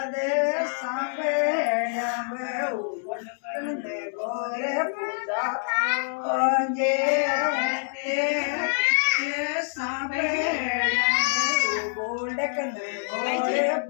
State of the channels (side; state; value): right; silent; digital silence